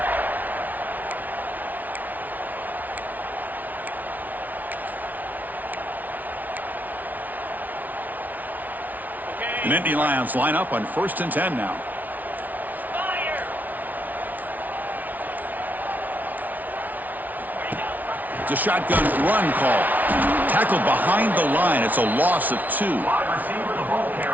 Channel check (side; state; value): left; late; 0.078 ms